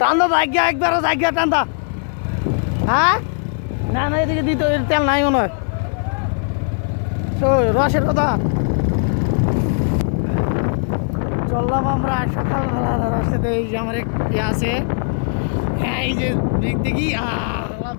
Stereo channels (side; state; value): right; silent; 66 dB below the other